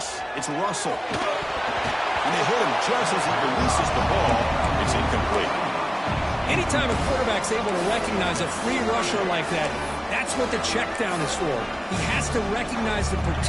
It's Russell. And they hit him just as he releases the ball. It's incomplete. Anytime a quarterback's able to recognize a free rusher like that, that's what the check down is for. He has to recognize the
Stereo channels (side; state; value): both; identical; correlation 1.00